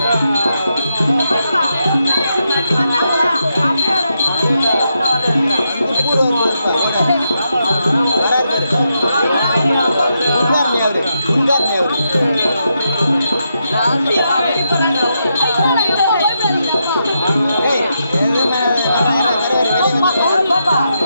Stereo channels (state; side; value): inverted; both; correlation -0.83